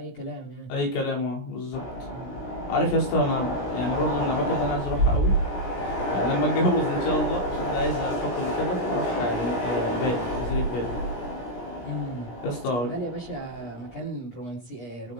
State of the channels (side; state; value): right; late; 17 ms